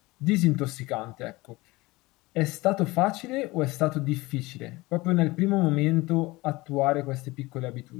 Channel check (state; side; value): quieter; right; 21.4 dB